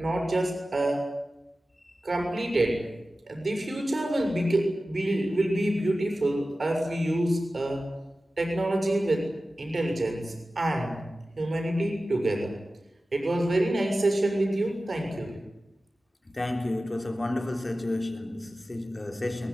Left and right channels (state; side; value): normal; both; correlation 0.95